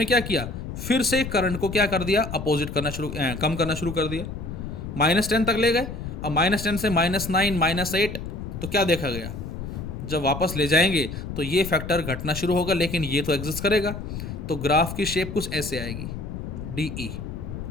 क्या किया, फिर से करंट को क्या कर दिया, अपोजिट करना शुरू, कम करना शुरू कर दिया, -10 तक ले गए। अब -10 से -9, -8, तो क्या देखा गया, जब वापस ले जाएंगे तो ये फैक्टर घटना शुरू होगा, लेकिन ये तो एग्जिस्ट करेगा। तो ग्राफ की शेप कुछ ऐसे आएगी, DE,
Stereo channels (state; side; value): noise; left; rumble, 7 dB below the sound